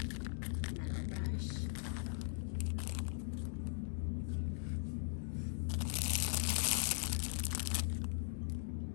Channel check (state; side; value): silent; right; digital silence